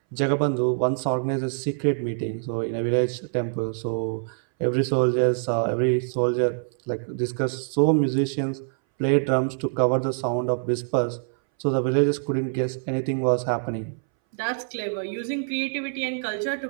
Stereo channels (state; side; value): silent; left; 62 dB below the other